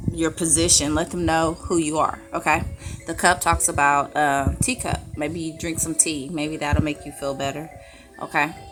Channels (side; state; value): both; identical; correlation 1.00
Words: your position, let them know who you are. Okay. The cup talks about teacup. Maybe you drink some tea, maybe that'll make you feel better. Okay.